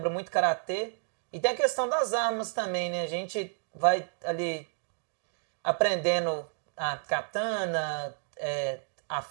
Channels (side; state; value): left; silent; 57 dB below the other